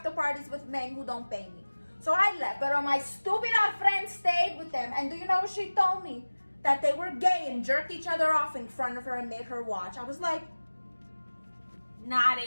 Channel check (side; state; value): both; inverted; correlation -1.00